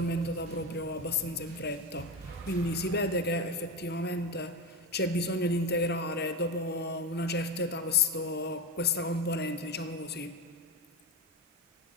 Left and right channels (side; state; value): both; normal; correlation 0.17